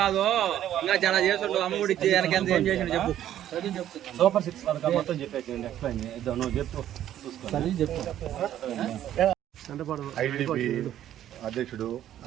ఇంకా చాలా చేస్తుండ్రు. అమ్మఒడి ఏం చేసిండు చెప్పు. సూపర్ 6 పథకాలు మొత్తం చెప్పేసి ఎక్స్ప్లెయిన్ నువ్వు చెప్పు. ఐటీడీపీ అధ్యక్షుడు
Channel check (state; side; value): quieter; left; 11.6 dB